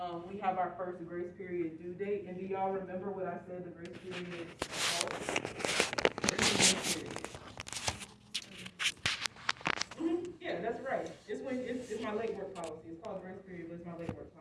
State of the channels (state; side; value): identical; both; correlation 1.00